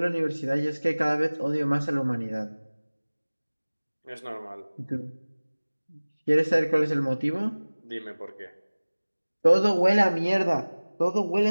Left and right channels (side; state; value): both; inverted; correlation -1.00